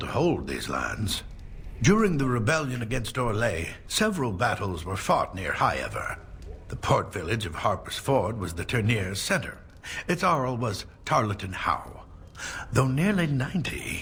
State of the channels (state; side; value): identical; both; correlation 1.00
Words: hold these lands. During the rebellion against Orlais, several battles were fought near Highever. The port village of Harper's Ford was the tourneur's center. Its Arl was Tarleton Howe. Though nearly 90,